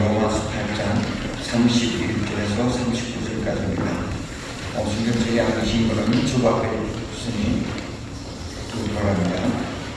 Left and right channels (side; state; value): both; identical; correlation 1.00